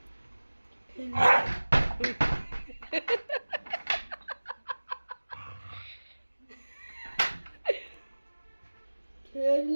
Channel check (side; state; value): both; inverted; correlation -1.00